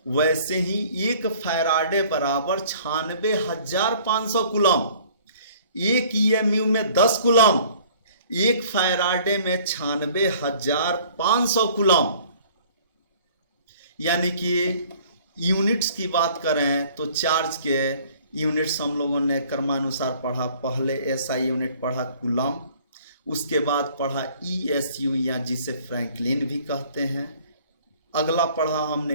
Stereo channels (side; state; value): both; inverted; correlation -0.54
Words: वैसे ही एक फैराडे बराबर 96,500 कूलम्ब। एक EMU में 10 कूलम्ब, एक फैराडे में 96,500 कूलम्ब। यानी कि यूनिट्स की बात करें तो चार्ज के यूनिट्स हम लोगों ने क्रमानुसार पढ़ा। पहले SI यूनिट पढ़ा कूलम्ब, उसके बाद पढ़ा ESU या जिसे फ्रैंकलिन भी कहते हैं। अगला पढ़ा